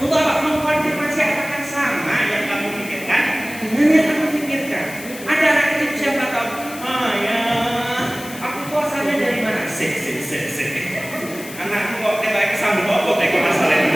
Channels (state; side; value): noise; left; hiss, 14 dB below the sound